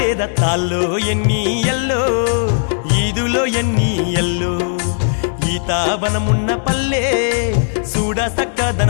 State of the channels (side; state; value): right; silent; digital silence